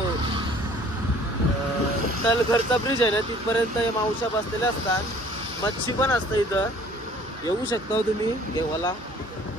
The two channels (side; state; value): both; normal; correlation 0.54